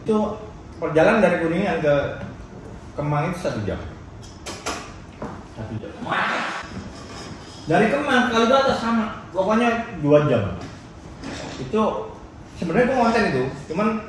Itu perjalanan dari Kuningan ke Kemang itu 1 jam. 1 jam. Dari Kemang ke Kalibata sama, pokoknya 2 jam. Itu sebenarnya gue konten itu, cuman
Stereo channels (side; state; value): both; identical; correlation 1.00